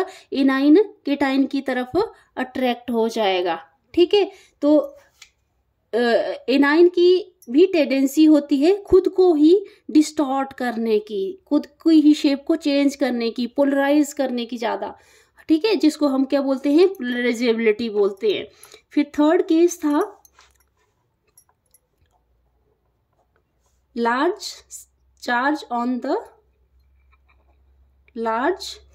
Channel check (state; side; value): identical; both; correlation 1.00